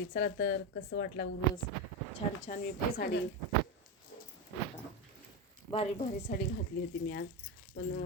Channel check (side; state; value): both; normal; correlation 0.14